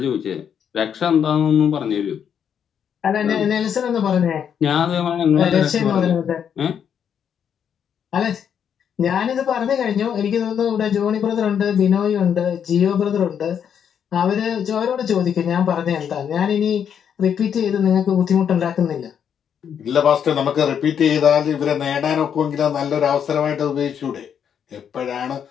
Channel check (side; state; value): right; quieter; 8.2 dB